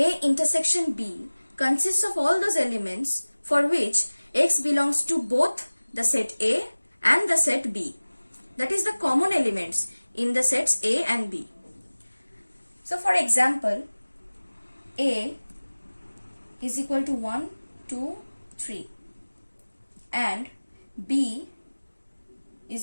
intersection B consists of all those elements for which X belongs to both the set A and the set B. That is the common elements in the sets A and B. So for example, A is equal to 1, 2, 3 and B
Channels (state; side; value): inverted; both; correlation -1.00